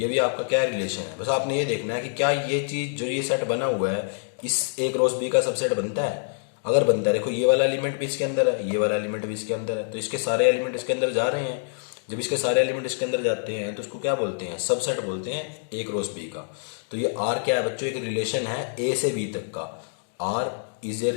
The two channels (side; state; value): right; silent; digital silence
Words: भी आपका क्या रिलेशन है। बस आपने ये देखना है कि क्या ये चीज जो ये सेट बना हुआ है इस ए क्रॉस बी का सबसेट बनता है। अगर बनता है, देखो ये वाला एलिमेंट भी इसके अंदर है, ये वाला एलिमेंट भी इसके अंदर है, तो इसके सारे एलिमेंट इसके अंदर जा रहे हैं। जब इसके सारे एलिमेंट इसके अंदर जाते हैं तो इसको क्या बोलते हैं, सबसेट बोलते हैं ए क्रॉस बी का। तो ये आर क्या है बच्चों, एक रिलेशन है ए से बी तक का। R is a